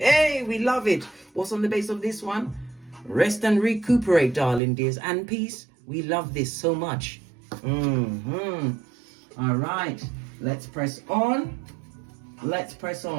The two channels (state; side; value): drops out; left; at 4.6 s